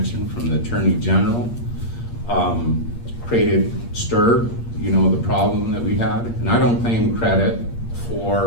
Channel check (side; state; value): right; late; 8.6 ms